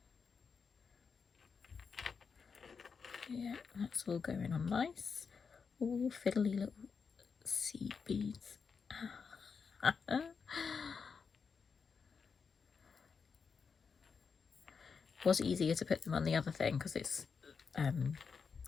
Yeah, that's all going on nice. All fiddly little seed beads. It was easier to put them on the other thing because it's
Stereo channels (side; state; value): right; quieter; 5.7 dB